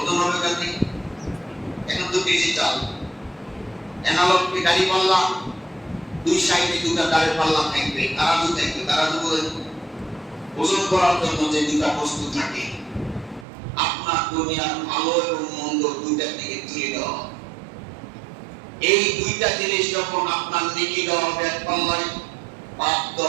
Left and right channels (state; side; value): drops out; left; at 13.5 s